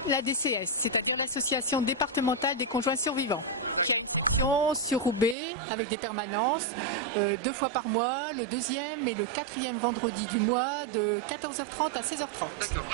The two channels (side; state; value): left; drops out; at 5.4 s